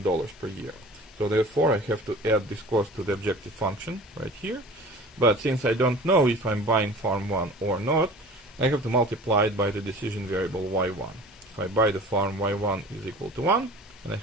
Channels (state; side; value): normal; both; correlation 0.42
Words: per year. So therefore I have to add this cost to the objective function right here. But since I don't know if I'm buying farm 1 or not, I have to multiply it by the decision variable y1. If I buy the farm, y1 is equal to 1, and I